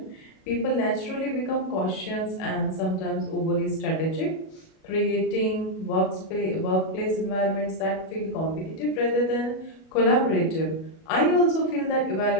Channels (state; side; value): late; right; 37 ms